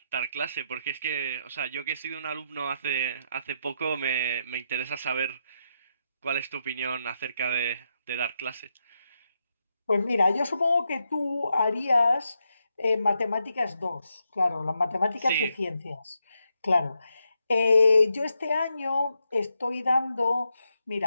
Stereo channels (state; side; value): inverted; both; correlation -0.83